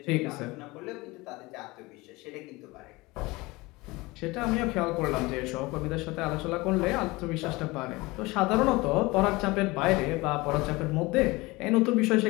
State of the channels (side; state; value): right; quieter; 22.4 dB